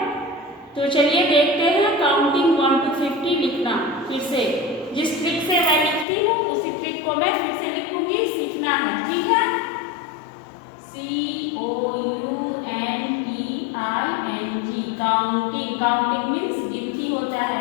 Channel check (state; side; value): drops out; right; at 6.1 s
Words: तो चलिए देखते हैं काउंटिंग 1 to 50 लिखना। फिर से जिस ट्रिक से मैं लिखती हूँ उसी ट्रिक को मैं फिर से लिखूंगी, सीखना है। ठीक है, COUNTING, काउंटिंग। काउंटिंग मीन्स गिनती होता है,